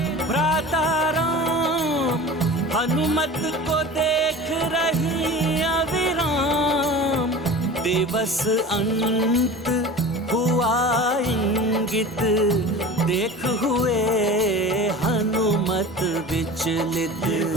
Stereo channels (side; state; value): both; normal; correlation 0.37